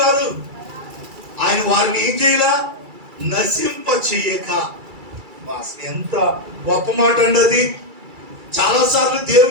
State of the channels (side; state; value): left; late; 2.3 ms